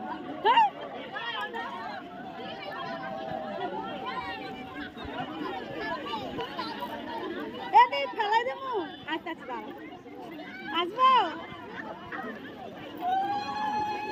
ফেলাই দেবো। আচ্ছা আচ্ছা আসবো।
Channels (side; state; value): both; identical; correlation 1.00